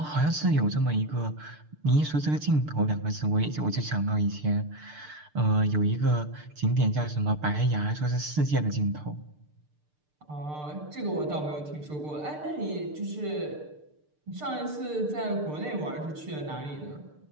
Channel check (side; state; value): left; late; 6.7 ms